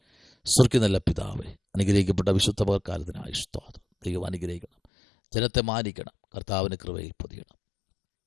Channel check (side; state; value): right; drops out; at 4.9 s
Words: സ്വർഗ്ഗീയ നല്ല പിതാവേ, അനുഗ്രഹിക്കപ്പെട്ട വിശുദ്ധ പകൽക്കാലത്തിനായി സ്തോത്രം. ദൈവം അനുഗ്രഹിക്കണം, ജനത്തെ മാനിക്കണം, കർത്താവിന് കൃപയിൽ പൊതിയണം.